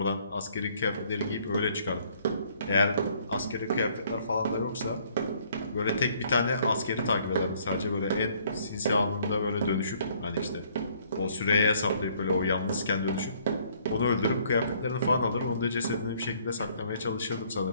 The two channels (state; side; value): inverted; both; correlation -0.63